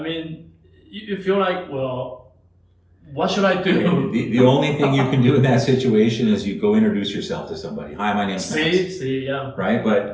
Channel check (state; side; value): identical; both; correlation 1.00